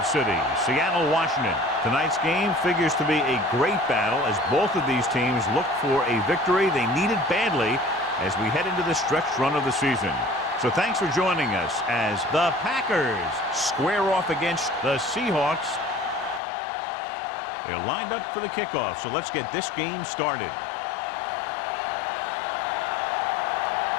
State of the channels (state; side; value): drops out; right; at 16.4 s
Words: City, Seattle, Washington. Tonight's game figures to be a great battle as both of these teams look for a victory they needed badly as we head into the stretch run of the season. So thanks for joining us as the Packers square off against the Seahawks. They're lined up for the kickoff, so let's get this game started.